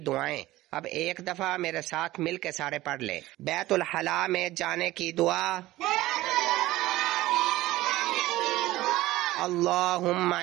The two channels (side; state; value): left; quieter; 17.0 dB